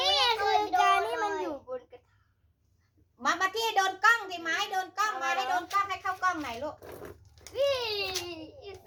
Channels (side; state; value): both; identical; correlation 1.00